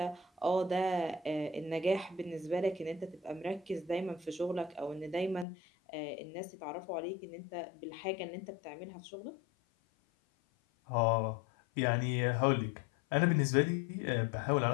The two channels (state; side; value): drops out; right; at 5.5 s